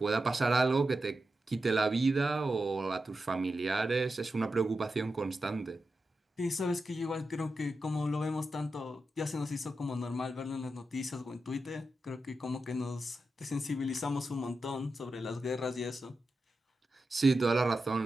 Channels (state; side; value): normal; both; correlation 0.90